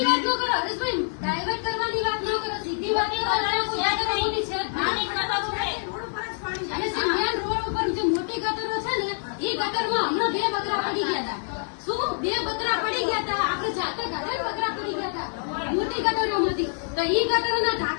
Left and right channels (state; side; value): silent; right; 60 dB below the other